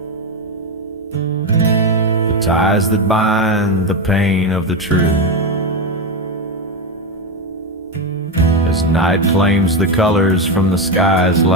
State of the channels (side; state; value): both; normal; correlation 0.12